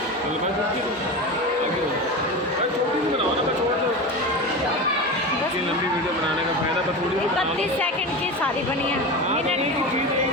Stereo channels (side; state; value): both; normal; correlation 0.25